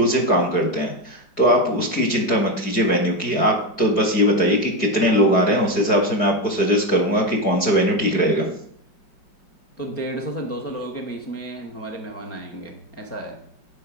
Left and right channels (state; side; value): late; right; 4.8 ms